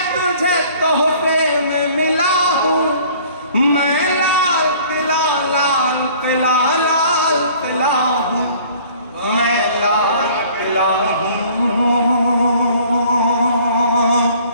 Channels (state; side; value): inverted; both; correlation -0.52